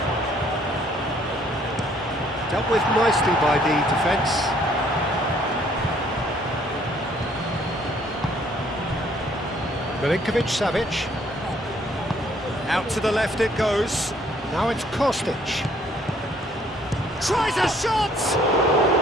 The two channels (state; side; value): normal; both; correlation 0.63